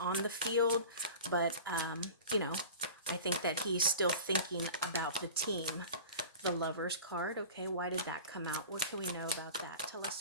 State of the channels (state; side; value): inverted; both; correlation -0.36